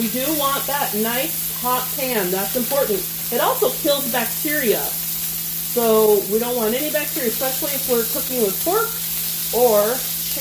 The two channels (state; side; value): identical; both; correlation 1.00